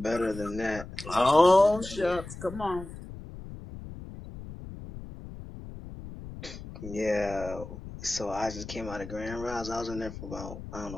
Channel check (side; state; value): left; noise; rumble, 12 dB below the sound